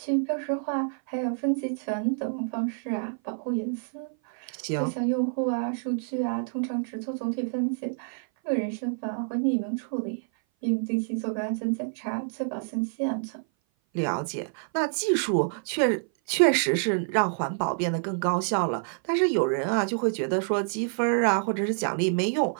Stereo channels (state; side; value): silent; left; 57 dB below the other